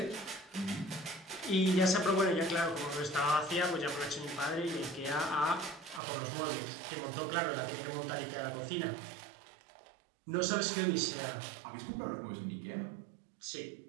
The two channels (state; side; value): drops out; left; at 6.0 s